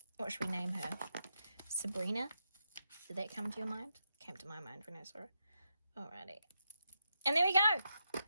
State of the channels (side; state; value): both; inverted; correlation -0.83